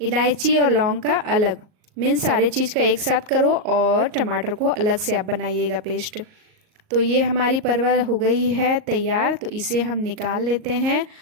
इलायची और लौंग का अलग, मीन्स सारे चीज़ का एक साथ करो, और टमाटर को अलग से आप बनाइएगा पेस्ट। तो ये हमारी परवल हो गई है तैयार, तो इसे हम निकाल लेते हैं।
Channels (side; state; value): left; late; 38 ms